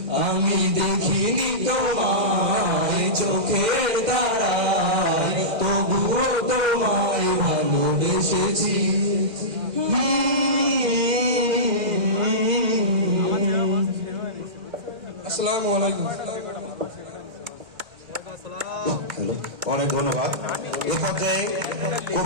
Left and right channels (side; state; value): left; late; 2.0 ms